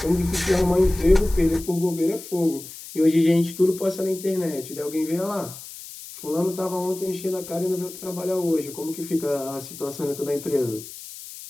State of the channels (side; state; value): left; noise; hiss, 14 dB below the sound